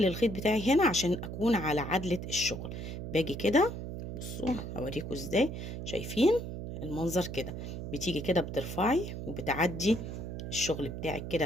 الخيط بتاعي هنا عشان اكون على عدلة الشغل. باجي كده، بصوا هوريكم ازاي. شايفين المنظر كده؟ بتيجي كده بترفعي وبتعدي الشغل بتاعك كده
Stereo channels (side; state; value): right; noise; hum, 7 dB below the sound